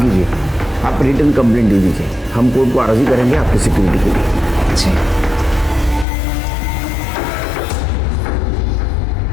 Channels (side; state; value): right; drops out; at 6.1 s